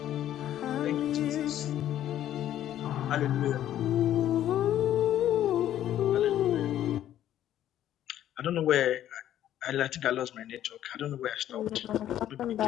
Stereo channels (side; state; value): right; quieter; 11.8 dB